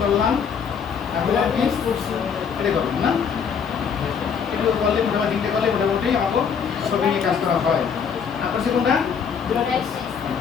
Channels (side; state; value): right; quieter; 6.8 dB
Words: করলাম, তারপরে মিক্স করছি, এটা করলাম না? একটু করলে মোটামুটি তিনটে করলে মোটামুটি আমাকে ছবি নিয়ে কাজ করা হয়। আপনার কোনটা?